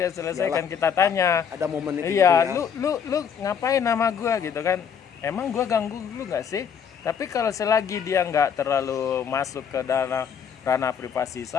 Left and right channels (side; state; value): right; quieter; 7.4 dB